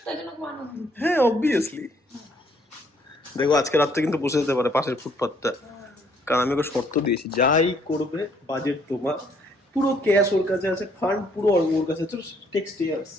হ্যাঁ অবভিয়াসলি। দেখো আজকে রাত্রে কিন্তু বসে যেতে পারে পাশের ফুটপাথটা, কারণ আমি ওকে শর্ত দিয়েছি যাই করবে বাজেট তোমার, পুরো ক্যাশ ওর কাছে আছে, ফান্ড পুরো ওর কাছে আছে, টেক্সট ইয়ার্স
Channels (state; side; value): normal; both; correlation 0.66